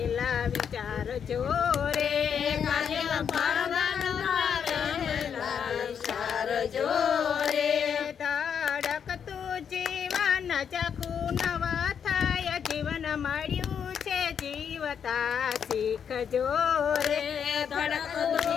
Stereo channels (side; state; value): right; quieter; 7.6 dB